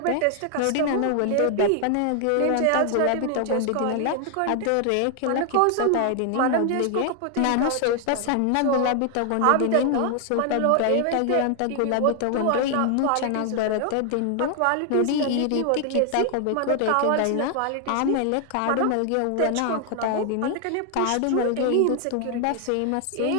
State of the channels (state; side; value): different; both; correlation 0.00